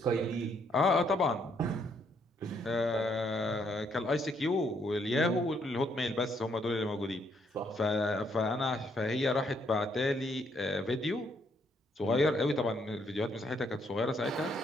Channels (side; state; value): both; normal; correlation 0.71